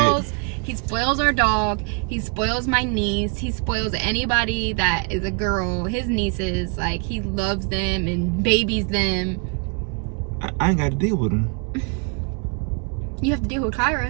He spoils our dog. He spoils my niece. He spoils anybody that is a girl. His nieces, like, he loves them and babies them. I ain't got to deal with him. You have to deal with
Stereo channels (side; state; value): left; quieter; 35.6 dB